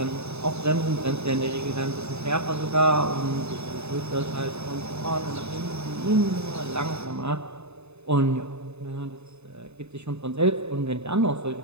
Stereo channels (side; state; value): left; late; 0.80 ms